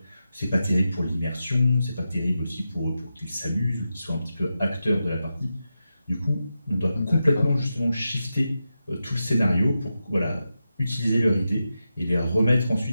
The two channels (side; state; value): both; inverted; correlation -0.90